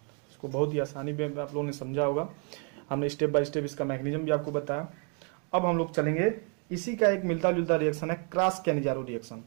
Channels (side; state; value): left; quieter; 38.9 dB